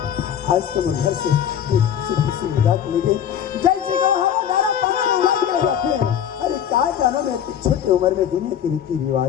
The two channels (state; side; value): quieter; right; 9.4 dB